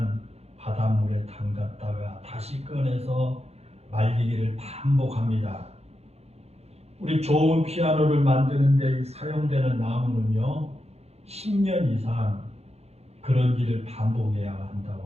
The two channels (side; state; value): left; late; 0.30 ms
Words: 바닷물에 담갔다가 다시 꺼내서 말리기를 반복합니다. 우리 좋은 피아노를 만드는 데 사용되는 나무는요 10년 이상 그런 일을 반복해야